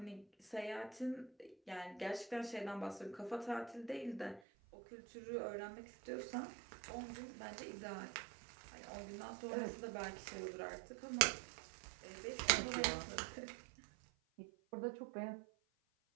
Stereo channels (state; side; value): drops out; left; at 4.4 s